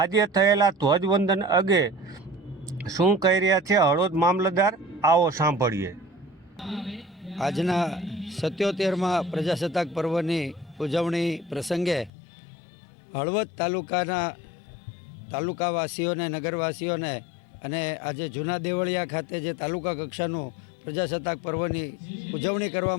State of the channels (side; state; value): right; drops out; at 12.1 s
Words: થયેલા ધ્વજવંદન અંગે શું કહી રહ્યા છે હળવદ મામલતદાર, આવો સાંભળીએ। આજના 77માં પ્રજાસત્તાક પર્વની ઉજવણી પ્રસંગે હળવદ તાલુકાવાસીઓને, નગરવાસીઓને અને આજે જૂના દેવળિયા ખાતે જે તાલુકા કક્ષાનું પ્રજાસત્તાક પર્વની ઉજવણી